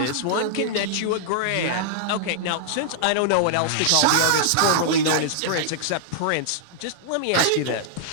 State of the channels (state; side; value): different; both; correlation -0.01